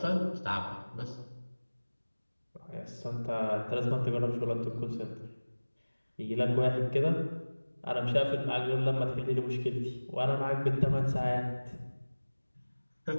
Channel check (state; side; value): inverted; both; correlation -1.00